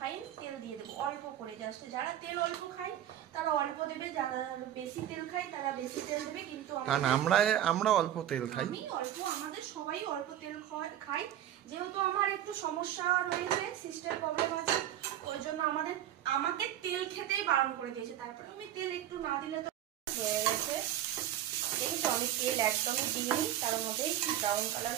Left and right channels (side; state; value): left; quieter; 11.7 dB